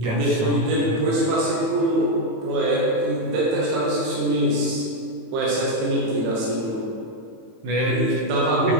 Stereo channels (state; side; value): late; left; 18 ms